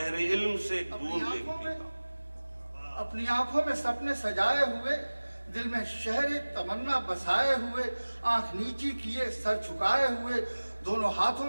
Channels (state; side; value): inverted; both; correlation -1.00